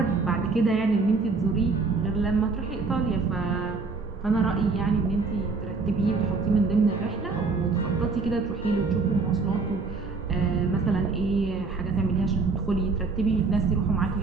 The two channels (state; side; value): quieter; left; 4.2 dB